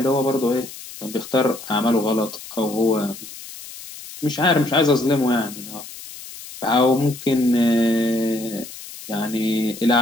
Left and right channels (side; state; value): left; noise; hiss, 14 dB below the sound